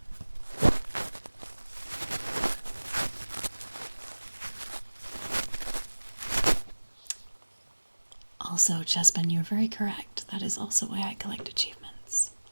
Also, Chespin, you're very correct. That is also why I collect achievements.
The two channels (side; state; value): both; inverted; correlation -1.00